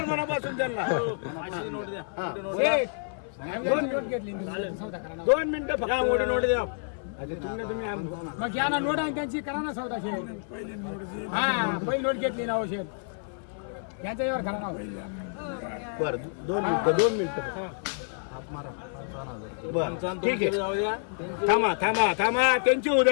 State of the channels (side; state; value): right; silent; 59 dB below the other